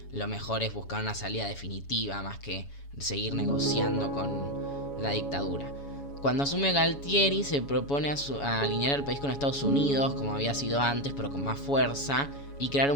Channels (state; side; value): late; right; 7.1 ms